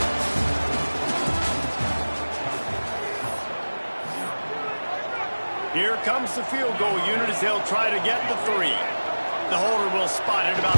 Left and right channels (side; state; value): both; inverted; correlation -1.00